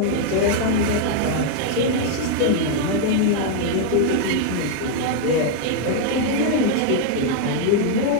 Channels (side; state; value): both; different; correlation 0.00